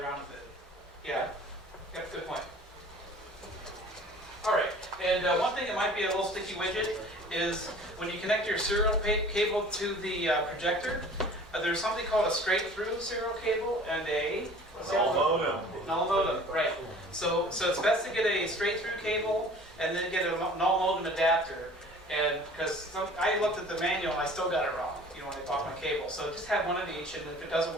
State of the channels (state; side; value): normal; both; correlation 0.47